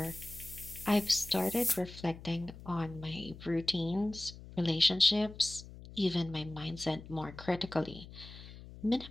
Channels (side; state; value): left; noise; hum, 15 dB below the sound